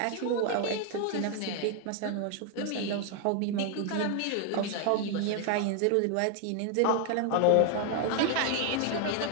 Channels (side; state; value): both; different; correlation 0.01